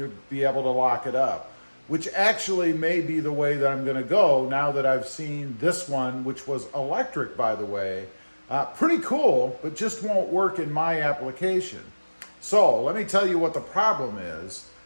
be able to lock it up, which actually may be the way that I'm gonna go now that I've seen this one, which was electric, by the way. Pretty cool, but just won't work in my application. So let me tell you what the problem is.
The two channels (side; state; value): both; inverted; correlation -1.00